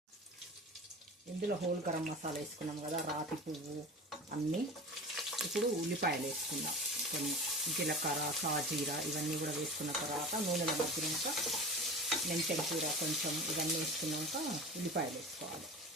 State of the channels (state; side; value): normal; both; correlation 0.34